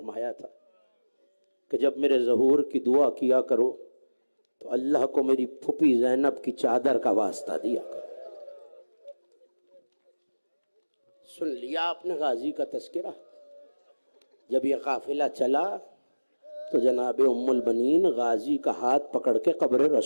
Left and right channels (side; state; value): both; inverted; correlation -1.00